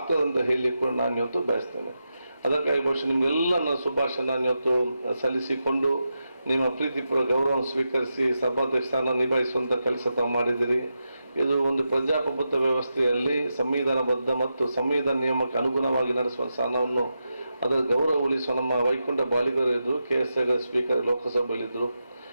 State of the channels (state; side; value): inverted; both; correlation -0.88